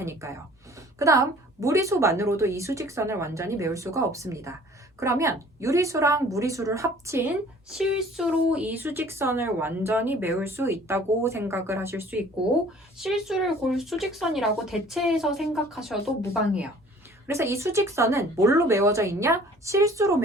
그 다음 무리수만으로도 이 수직선을 완전히 메울 수가 없습니다. 그러면 유리수랑 무리수를 합친 실수로 이 수직선을 완전히 메울 수 있다고 생각을 하실 수 있고 실수를 골 수직선이라고 대체해서 생각하셔도 무방해요. 그래서 이 수직선은 뭘로 메워져 있냐? 실수로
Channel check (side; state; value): both; normal; correlation 0.51